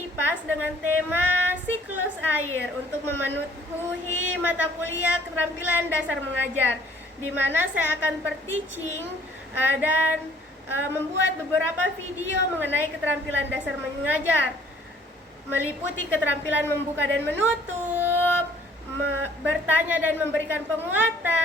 dengan tema siklus air untuk memenuhi mata kuliah keterampilan dasar mengajar, di mana saya akan per-teaching dan membuat beberapa video mengenai keterampilan dasar mengajar, meliputi keterampilan membuka dan menutup, bertanya dan memberikan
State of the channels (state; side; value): normal; both; correlation 0.58